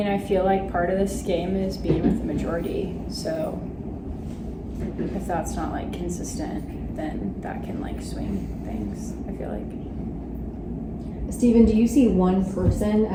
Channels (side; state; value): both; identical; correlation 1.00